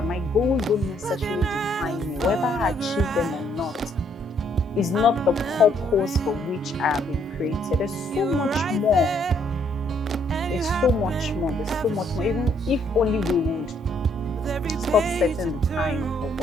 my goals don't necessarily define me. Whether I achieve them or not is not the purpose for which I have been created. There's so much more. There's so much more. Even if only we would stop setting the time for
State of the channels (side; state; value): both; normal; correlation 0.69